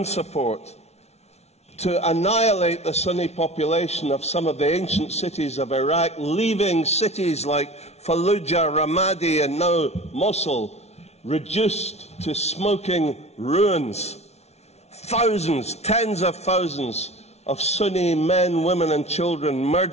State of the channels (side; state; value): right; late; 0.31 ms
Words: support, to annihilate the Sunni population of some of the ancient cities of Iraq, leaving cities like Fallujah, Ramadi, and now Mosul reduced to smoking ruins. Thousands, tens of thousands of Sunni men, women, and children